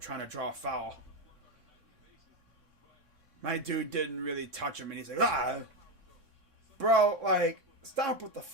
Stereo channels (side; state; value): left; late; 3.6 ms